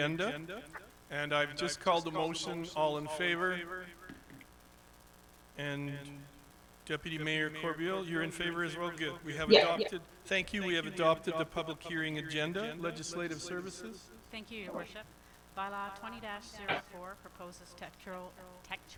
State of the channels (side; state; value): both; identical; correlation 1.00